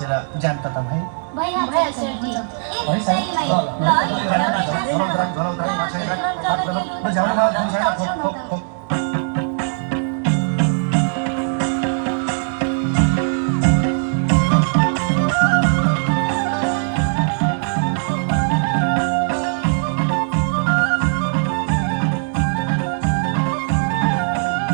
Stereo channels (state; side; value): silent; left; digital silence